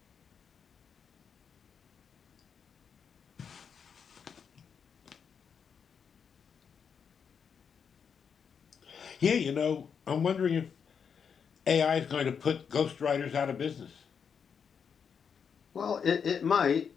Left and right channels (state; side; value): quieter; right; 6.8 dB